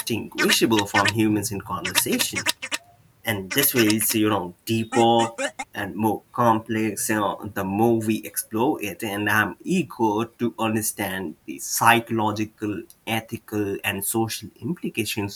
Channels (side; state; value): both; identical; correlation 1.00